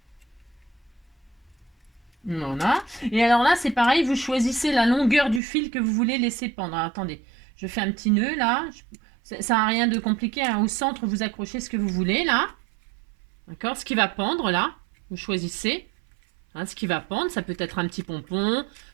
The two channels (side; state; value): left; drops out; at 5.4 s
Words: Voilà. Et alors là, c'est pareil, vous choisissez la longueur du fil que vous voulez laisser pendre. Alors, attendez, je fais un petit nœud là. Ça n'a rien de compliqué. Hein. Au centre, vous accrochez ce que vous voulez là. D'accord? Ce qui va pendre là, vous choisissez. Hein, ce qui va pendre, ça peut être un petit pompon,